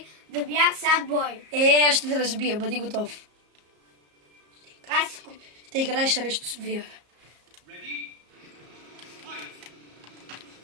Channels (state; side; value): late; left; 34 ms